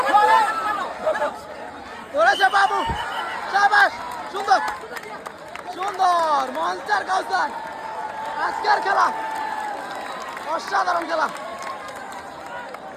ধরেছে বাবু সাবাস সুন্দর সুন্দর মনস্টার কাউসার আজকের খেলা অসাধারণ খেলা।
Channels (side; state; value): both; identical; correlation 1.00